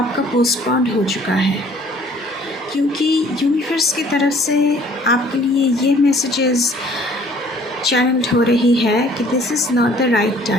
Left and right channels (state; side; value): normal; both; correlation 0.56